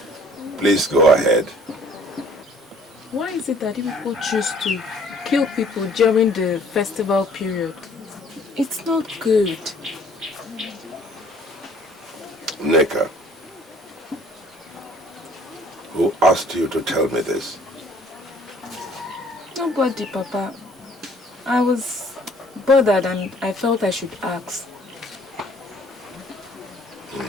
Please go ahead. Why is it that you people choose to kill people during the festival period? It's not good. Neka, who asked you to tell me this? Nobody, Papa. I was bothered and I felt I should ask.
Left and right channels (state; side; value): normal; both; correlation 0.56